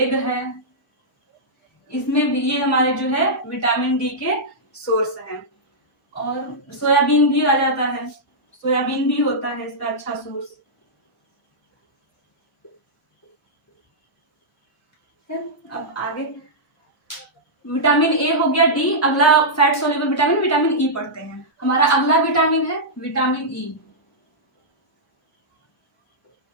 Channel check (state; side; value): normal; both; correlation -0.11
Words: है, इसमें भी ये हमारे जो है विटामिन डी के सोर्स हैं। और सोयाबीन भी आ जाता है, सोयाबीन भी होता है इसका अच्छा सोर्स। अब आगे विटामिन ए हो गया, डी। अगला fat soluble vitamin, vitamin E पढ़ते हैं। हमारा अगला विटामिन है विटामिन ई।